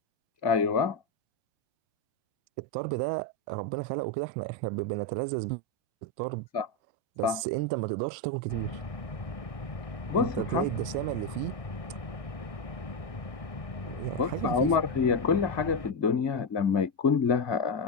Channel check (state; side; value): late; right; 1.2 ms